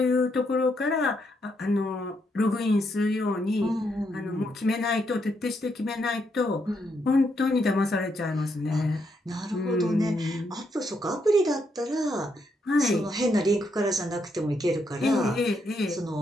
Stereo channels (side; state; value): both; normal; correlation 0.78